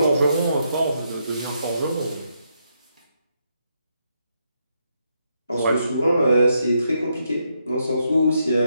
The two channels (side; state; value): both; inverted; correlation -0.79